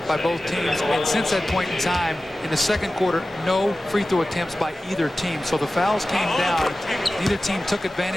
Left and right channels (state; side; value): normal; both; correlation 0.95